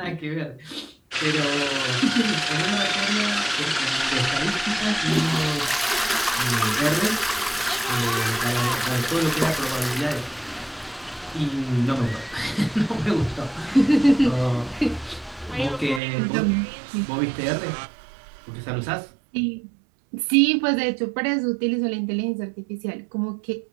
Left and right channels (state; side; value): drops out; left; at 16.0 s